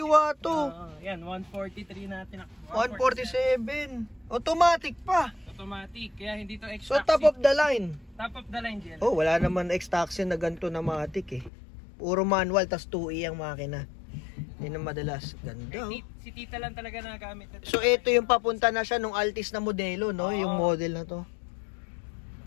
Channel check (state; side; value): drops out; right; at 11.5 s